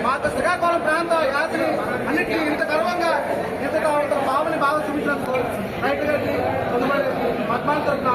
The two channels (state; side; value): identical; both; correlation 1.00